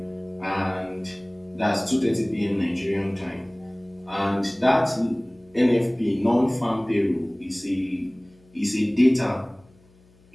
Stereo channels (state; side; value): noise; left; hum, 30 dB below the sound